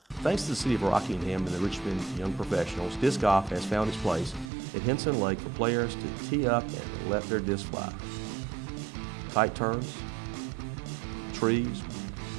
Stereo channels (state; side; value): drops out; left; at 4.5 s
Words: Thanks to the City of Rockingham and the Richmond Young Professionals, disc golf has found its place at Hinson Lake for players to tee up and let their disc fly. Tight turns, trees,